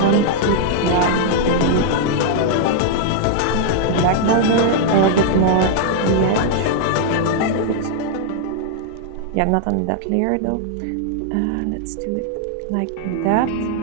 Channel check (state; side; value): different; both; correlation -0.01